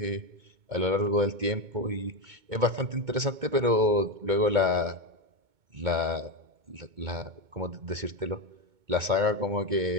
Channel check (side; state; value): left; late; 2.2 ms